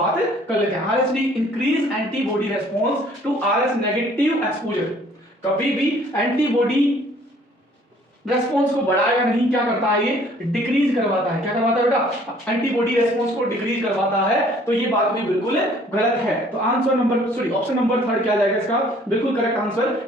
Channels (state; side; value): normal; both; correlation 0.57